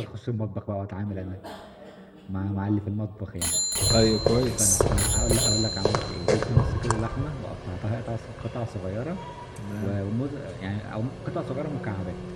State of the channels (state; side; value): identical; both; correlation 1.00